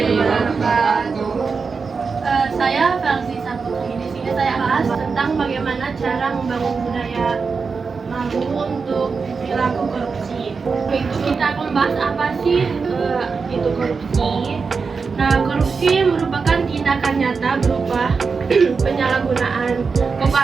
wabarakatuh. Saya Felsi Saputri. Di sini saya bahas tentang bagaimana cara membangun budaya malu untuk perilaku korupsi. Itu kita akan bahas apa sih itu korupsi. Nah, korupsi merupakan tindakan nyata berupa penyalahgunaan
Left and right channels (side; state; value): left; quieter; 5.0 dB